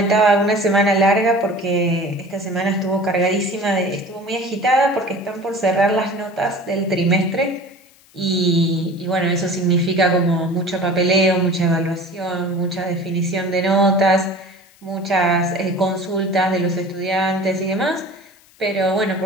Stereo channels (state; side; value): noise; left; hiss, 29 dB below the sound